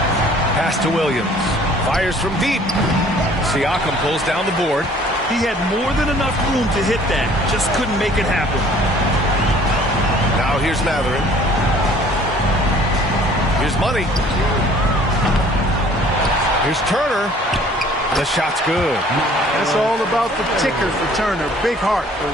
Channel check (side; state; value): both; normal; correlation 0.54